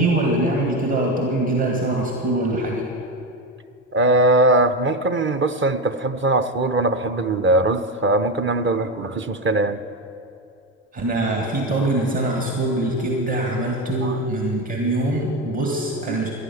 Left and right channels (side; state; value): both; normal; correlation 0.15